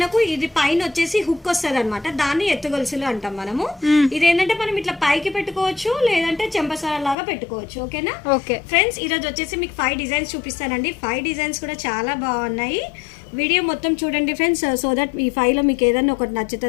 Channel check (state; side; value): drops out; right; at 7.2 s